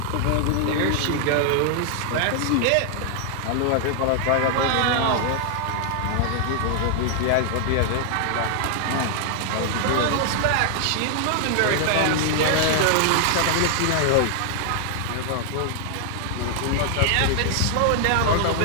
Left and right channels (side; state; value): both; different; correlation 0.00